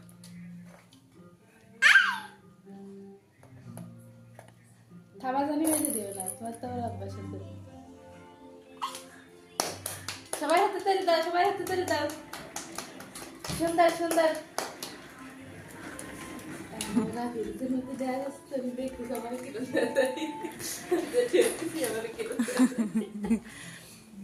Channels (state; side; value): identical; both; correlation 1.00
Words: খাবার জানি হয়ে দিও না তোমার তো অভ্যাস আছে সবাই হাতে তালি দাও সবাই হাতে তালি দাও সুন্দর সুন্দর না ভিডিওতে মধ্যে দেয়া যাচ্ছে আমি দেখতে সবাই কি করতে দেখি আমার কি করতে